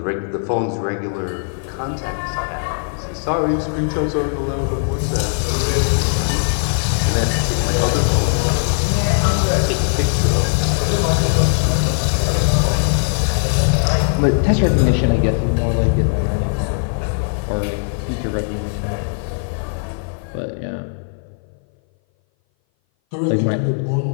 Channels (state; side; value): silent; right; 59 dB below the other